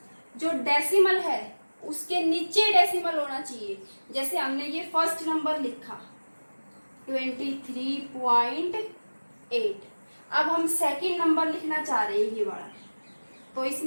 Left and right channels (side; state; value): both; inverted; correlation -1.00